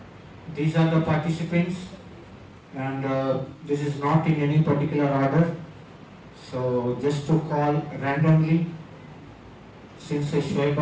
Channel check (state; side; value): identical; both; correlation 1.00